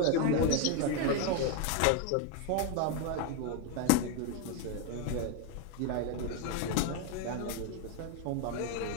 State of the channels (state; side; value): different; both; correlation 0.01